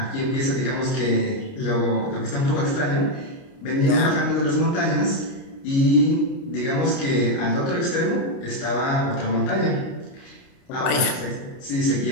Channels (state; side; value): late; right; 29 ms